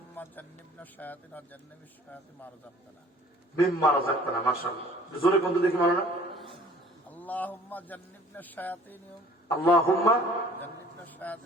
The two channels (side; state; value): both; normal; correlation 0.52